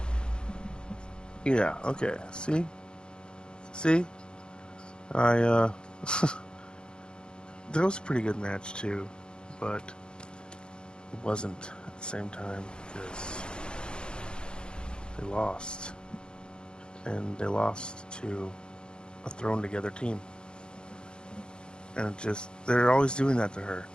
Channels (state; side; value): late; right; 0.049 ms